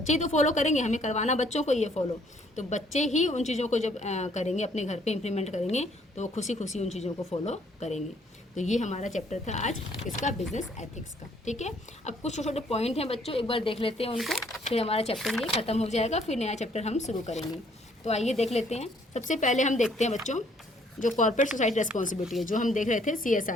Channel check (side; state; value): both; normal; correlation 0.64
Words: ही तो फॉलो करेंगे, हमें करवाना बच्चों को ये फॉलो, तो बच्चे ही उन चीज़ों को जब करेंगे, अपने घर पे इम्प्लीमेंट करेंगे, तो वो खुशी खुशी उन चीज़ों को फॉलो करेंगे। तो ये हमारा चैप्टर था आज इसका, बिजनेस एथिक्स का। ठीक है, अब कुछ छोटे छोटे पॉइंट हैं बच्चों, एक बार देख लेते हैं उनको, फिर हमारा चैप्टर ये ख़त्म हो जाएगा, फिर नया चैप्टर हम शुरू करेंगे। तो आइए देख लेते हैं। सबसे पहले हम देखते हैं बच्चों जो कॉर्पोरेट सोसाइटी रेस्पॉन्सिबिलिटी है, जो हम देख रहे थे